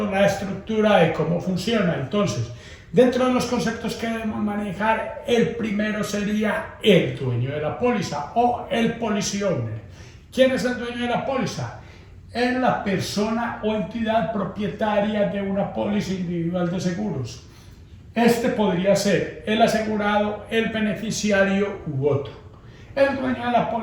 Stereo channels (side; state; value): both; identical; correlation 1.00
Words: la estructura de cómo funciona. Entonces, dentro de los conceptos que debemos manejar, el primero sería el dueño de la póliza o el policy owner. ¿Quién es el dueño de la póliza? Es la persona o entidad propietaria de una póliza individual de seguros. Este podría ser el asegurado, el beneficiario u otro. El dueño de la